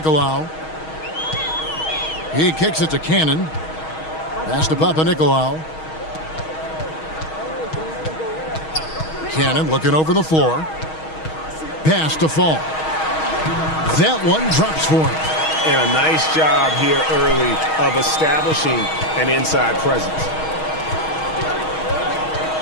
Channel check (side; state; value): right; late; 6.3 ms